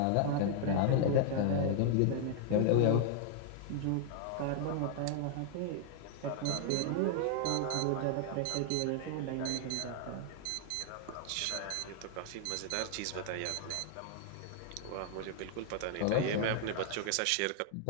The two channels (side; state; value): both; different; correlation 0.00